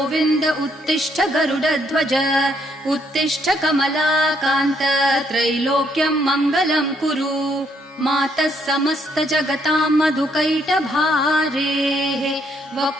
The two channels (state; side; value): normal; both; correlation 0.71